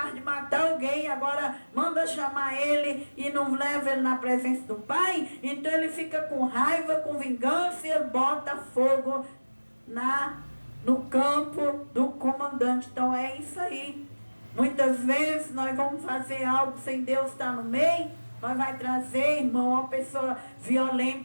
de matar alguém. Agora manda chamar ele e não leva ele na presença do pai. Então ele fica com raiva, com vingança, e ele bota fogo no campo do comandante. Então é isso aí. Muitas vezes nós vamos fazer algo sem Deus estar no meio. Nós vai trazer, irmão, uma pessoa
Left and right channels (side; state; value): both; inverted; correlation -1.00